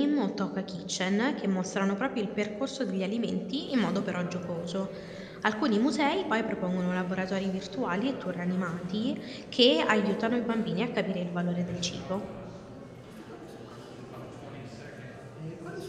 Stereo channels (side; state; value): both; identical; correlation 1.00